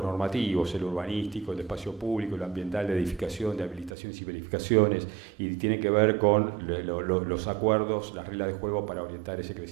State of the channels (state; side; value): drops out; left; at 3.9 s